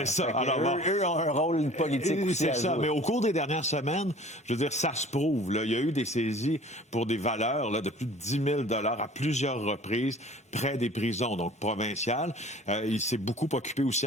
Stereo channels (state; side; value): normal; both; correlation 0.47